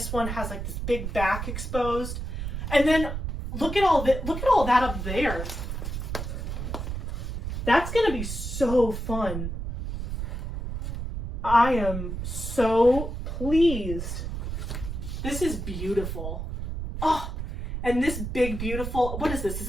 one has like this big back exposed. And then look at all that up there. That's gonna be so fun. I am so pleased. This is beautiful. Oh, and this big, beautiful, what is this? Is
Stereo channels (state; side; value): noise; right; rumble, 5 dB below the sound